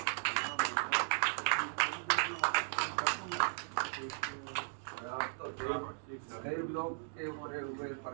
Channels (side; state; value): left; silent; 53 dB below the other